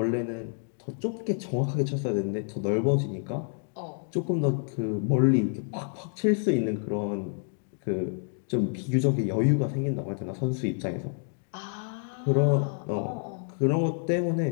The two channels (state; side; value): silent; right; 59 dB below the other